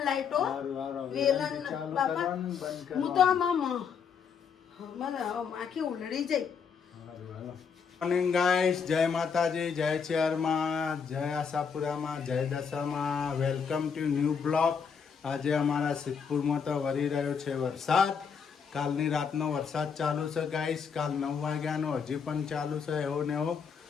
લાઈટો હારું, હારું. વેલન વેલણથી ચાલુ બાપા કરવાનું, બંધ હું તો આમ મને આમ આખી ઉલડી જાય મોર્નિંગ ગાઈસ, જય માતાજી, જય ચેરમાં, જય આશાપુરામાં, જય દશામાં. Welcome to new blog. આજે અમારા સિદ્ધપુરમાં તો વરી રહ્યો છે વરસાદ. કાલની રાતનો વરસાદ ચાલુ છે ગાઈસ. કાલ 9 વાગ્યાનો હજી પણ ચાલુ છે એવો ને એવો.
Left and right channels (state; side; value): quieter; right; 6.4 dB